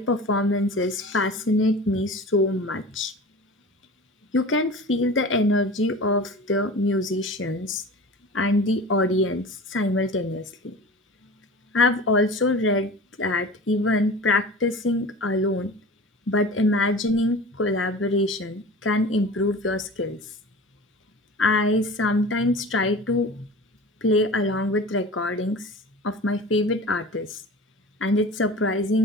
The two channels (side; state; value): both; normal; correlation 0.36